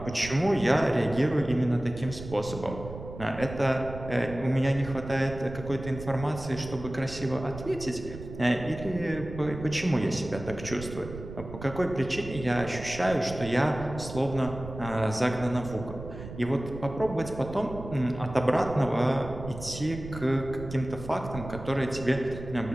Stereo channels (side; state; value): right; noise; rumble, 11 dB below the sound